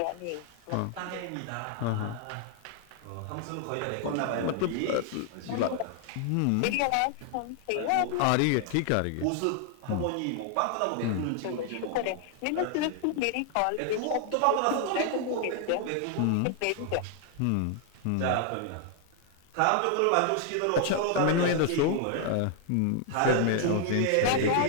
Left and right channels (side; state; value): both; different; correlation 0.00